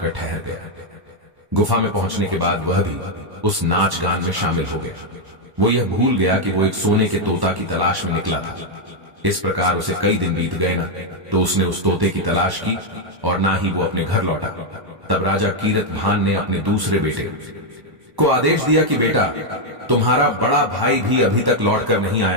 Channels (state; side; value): late; left; 1.1 ms